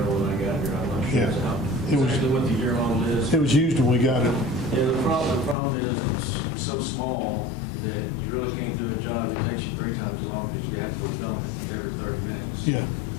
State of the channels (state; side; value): drops out; right; at 5.6 s